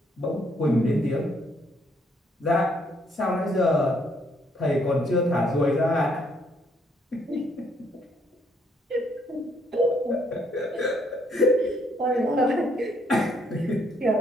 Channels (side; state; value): both; normal; correlation 0.70